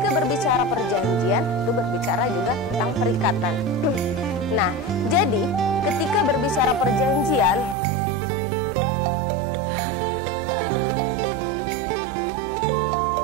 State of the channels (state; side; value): drops out; left; at 7.8 s